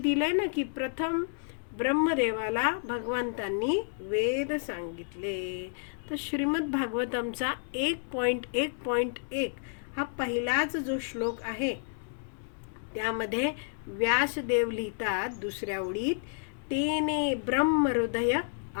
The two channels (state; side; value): silent; right; digital silence